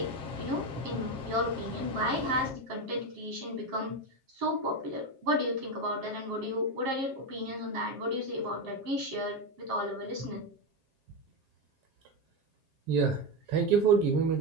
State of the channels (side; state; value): left; late; 7.4 ms